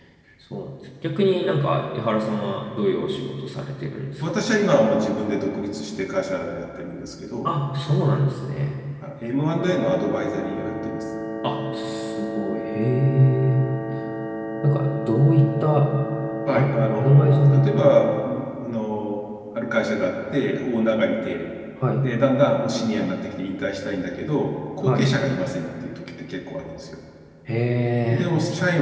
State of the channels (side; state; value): both; identical; correlation 1.00